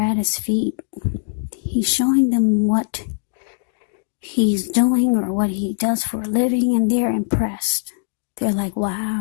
his feet, he's showing them what he's doing or what he does for a living, and they're impressed. They're like,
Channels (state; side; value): silent; right; digital silence